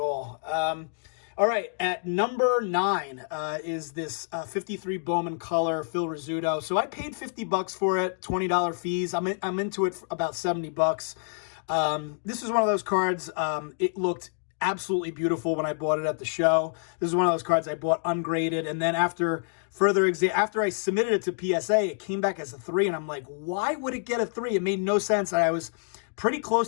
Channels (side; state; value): right; silent; digital silence